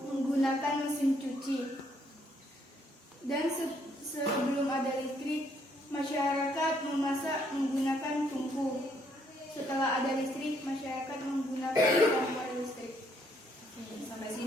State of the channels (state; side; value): normal; both; correlation 0.70